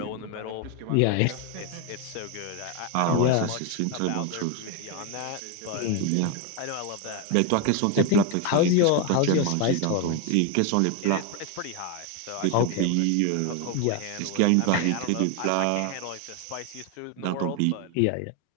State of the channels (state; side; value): different; both; correlation 0.01